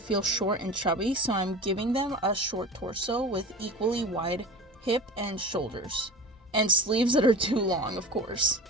short and chubby, so I'm giving them a short torso with equally wide hip and shoulders. And sleeves that are too long, of course.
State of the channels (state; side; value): normal; both; correlation 0.34